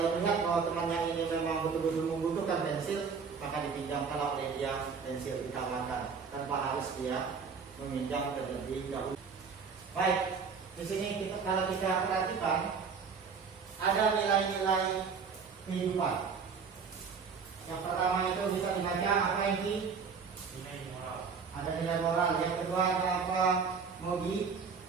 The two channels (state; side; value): quieter; left; 5.7 dB